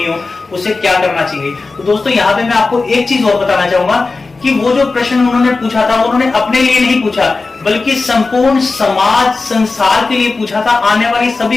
हो, उसे क्या करना चाहिए। तो दोस्तों यहाँ पे मैं आपको एक चीज और बताना चाहूंगा कि वो जो प्रश्न उन्होंने पूछा था, वो उन्होंने अपने लिए नहीं पूछा, बल्कि संपूर्ण समाज संसार के लिए पूछा था, आने वाली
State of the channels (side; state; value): right; quieter; 3.8 dB